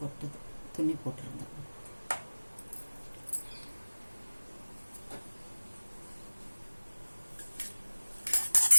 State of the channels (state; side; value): inverted; both; correlation -1.00